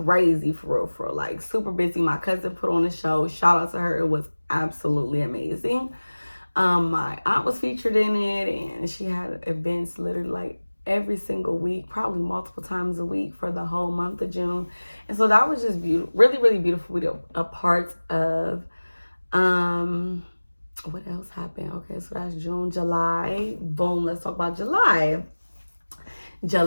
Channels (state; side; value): inverted; both; correlation -1.00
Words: for real, like super busy. My cousin put on a show. Shout out to her. It was absolutely amazing. My aunt was featured in it and she had events literally like every single week, probably multiple times a week for the whole month of June. And so that was just beautiful, really, really beautiful. A part of, what else happened? Okay, so that's June, July. Boom, let's talk about July.